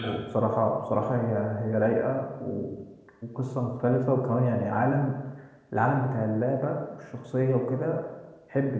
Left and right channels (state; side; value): identical; both; correlation 1.00